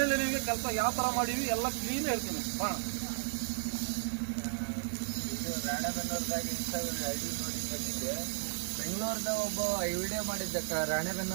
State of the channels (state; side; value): silent; left; 55 dB below the other